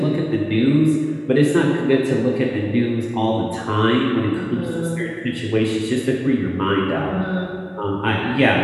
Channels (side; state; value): both; identical; correlation 1.00